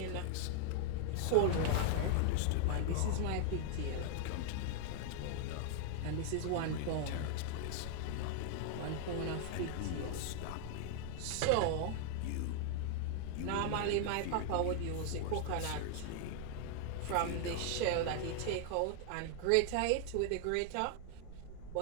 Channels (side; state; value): both; different; correlation 0.00